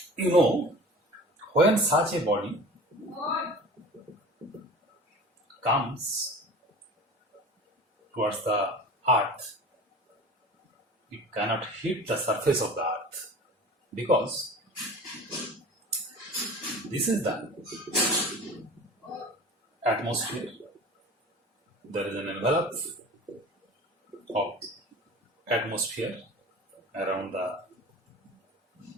you know, when such a body comes towards the earth, it cannot hit the surface of the earth because this is the atmosphere. There is an envelope of atmosphere around the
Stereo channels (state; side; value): normal; both; correlation 0.39